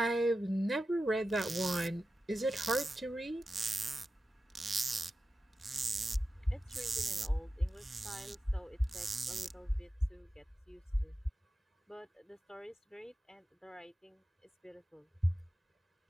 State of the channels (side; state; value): both; normal; correlation 0.93